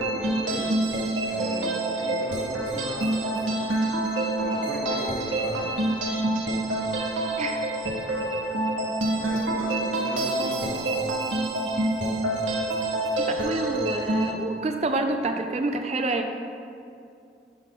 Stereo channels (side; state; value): both; normal; correlation 0.41